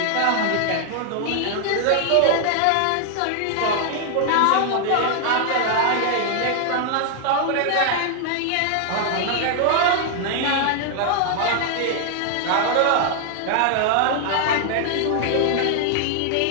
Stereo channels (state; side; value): different; both; correlation 0.00